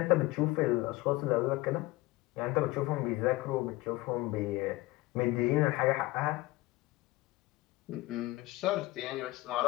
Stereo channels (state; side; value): quieter; right; 19.8 dB